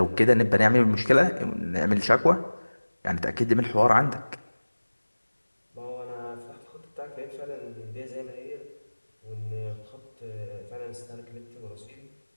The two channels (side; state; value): both; inverted; correlation -1.00